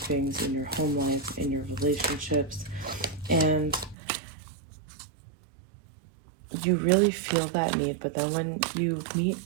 in your home life, in your relationships. And you really feel that need, but then when you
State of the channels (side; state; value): left; drops out; at 4.0 s